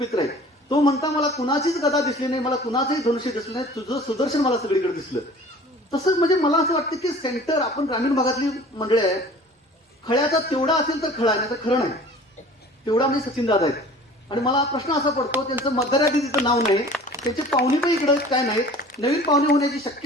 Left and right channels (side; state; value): both; normal; correlation 0.46